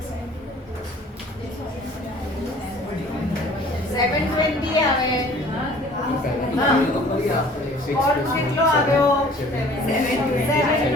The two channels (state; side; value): normal; both; correlation 0.51